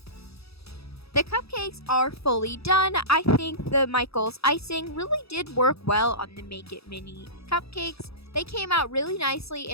The cupcakes are fully done. I think the Michaels icing really did work well on the Make It Mini cupcakes. They came out really nicely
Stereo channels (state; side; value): late; right; 0.77 ms